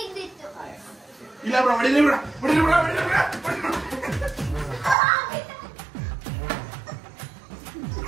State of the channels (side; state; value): left; drops out; at 5.0 s